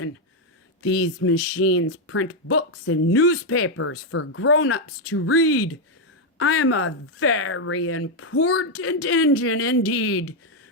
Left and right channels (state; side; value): normal; both; correlation 0.01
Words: These machines print books and newspapers for grown-ups to read. I am a very important engine indeed.